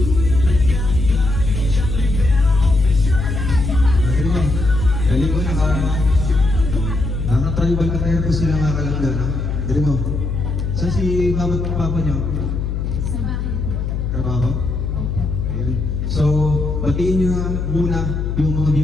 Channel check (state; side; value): noise; left; hum, 2 dB below the sound